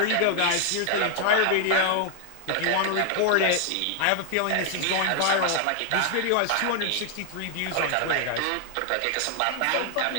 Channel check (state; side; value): different; both; correlation 0.00